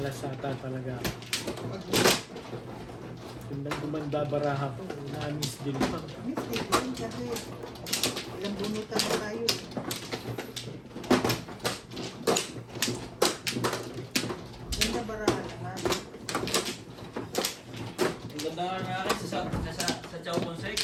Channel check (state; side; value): identical; both; correlation 1.00